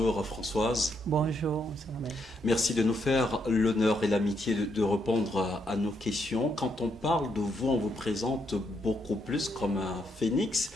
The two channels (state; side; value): normal; both; correlation 0.77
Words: Françoise. Bonjour. Merci de nous faire l'honneur et l'amitié de répondre à nos questions. Quand on parle de vous, on vous présente beaucoup plus comme un phénix